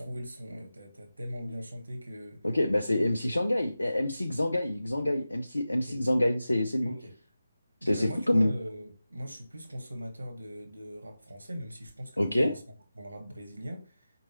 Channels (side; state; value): both; inverted; correlation -0.95